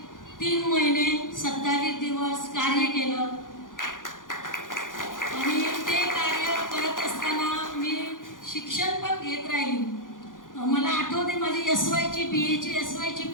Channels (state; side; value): late; right; 0.89 ms